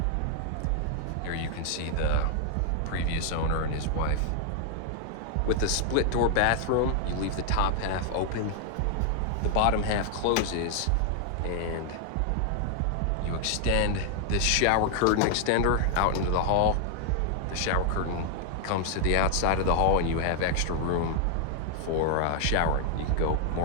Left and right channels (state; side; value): different; both; correlation 0.00